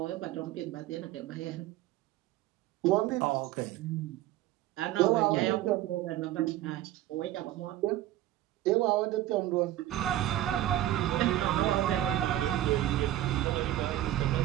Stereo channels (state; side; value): quieter; left; 14.2 dB